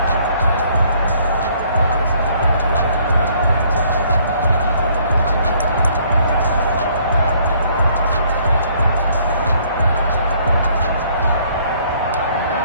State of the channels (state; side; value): inverted; both; correlation -0.62